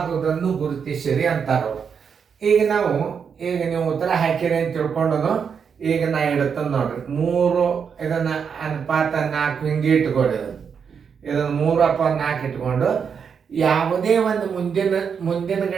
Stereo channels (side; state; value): left; quieter; 6.7 dB